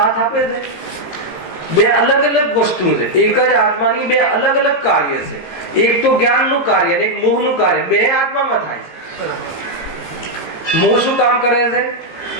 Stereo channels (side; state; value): right; late; 17 ms